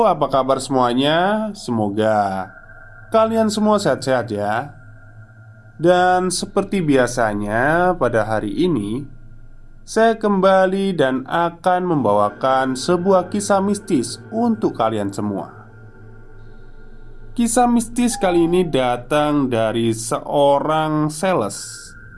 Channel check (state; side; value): identical; both; correlation 1.00